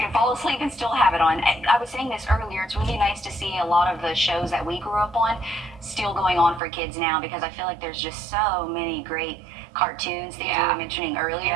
fall asleep and still have it on. I was saying this earlier. It's really nice to see a lot of the shows that we grew up on still going on for kids now, because I feel like there's just so many great cartoons, things we were mentioning earlier.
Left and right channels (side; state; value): left; drops out; at 6.6 s